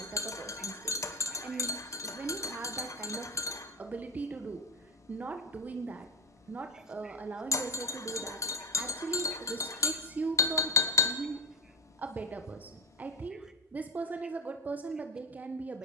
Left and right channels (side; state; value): both; normal; correlation 0.13